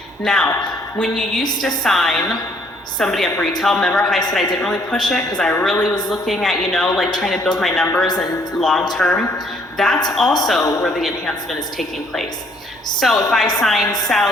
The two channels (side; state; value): both; normal; correlation 0.64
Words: Now, when you used to sign somebody up retail. Remember how I said I didn't really push it because I really was looking at, like trying to build my numbers and long term. That's also where the enhancement is taking place. So if I sign